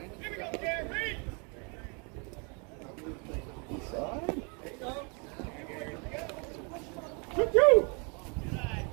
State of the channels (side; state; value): left; quieter; 34.2 dB